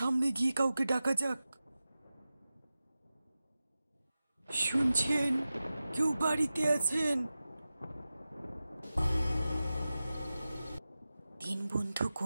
গিয়ে কাউকে ডাকা যাক। শুনছেন? কেউ বাড়িতে আছেন? তিন বন্ধু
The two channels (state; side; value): inverted; both; correlation -0.94